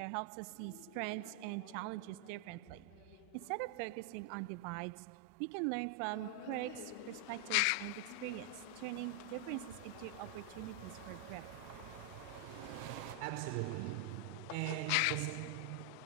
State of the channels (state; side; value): different; both; correlation 0.00